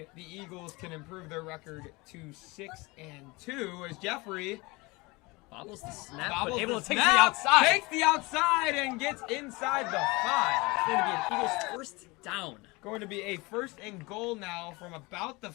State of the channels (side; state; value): right; quieter; 24.3 dB